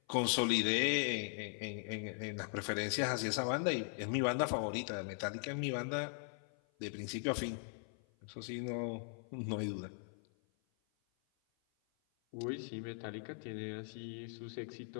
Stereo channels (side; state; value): right; silent; 51 dB below the other